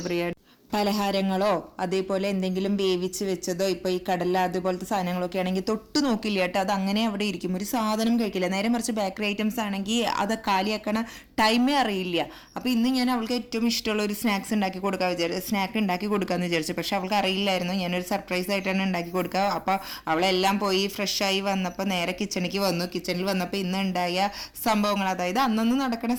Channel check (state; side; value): identical; both; correlation 1.00